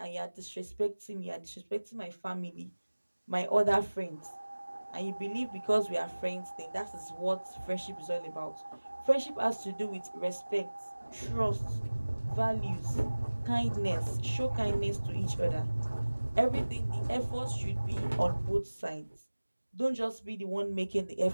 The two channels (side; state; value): both; inverted; correlation -1.00